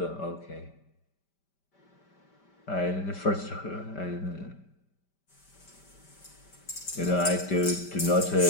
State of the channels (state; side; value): late; right; 5.1 ms